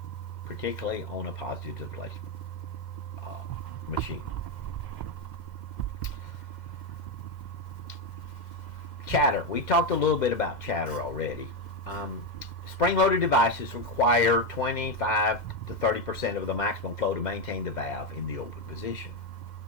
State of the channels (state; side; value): late; right; 2.1 ms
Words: particularly on a positive displacement machine. Chatter. We talked a little bit about chatter already. Spring-loaded devices require 25 to 30% of the maximum flow to maintain the valve in the open position.